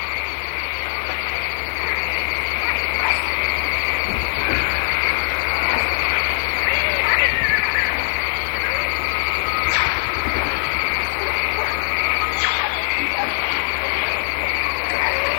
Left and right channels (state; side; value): silent; right; digital silence